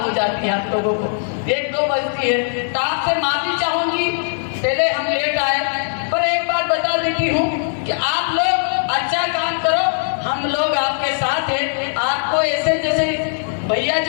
हो जाती है, आप लोगों को 1-2 बजती है, तो आपसे माफी चाहूंगी पहले हम लेट आए। पर एक बात बता देती हूँ कि आप लोग अच्छा काम करो, हम लोग आपके साथ हैं। आपको ऐसे जैसे भैया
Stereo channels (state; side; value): silent; right; digital silence